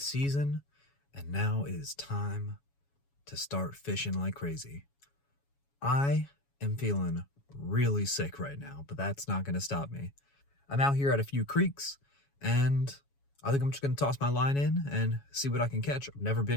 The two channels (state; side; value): late; right; 7.2 ms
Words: and now it is time to start fishing like crazy. I am feeling really sick right now, but that's not going to stop me. I'm out here at a few creeks, and I think I'm just going to toss my line in and see what I can catch. I've never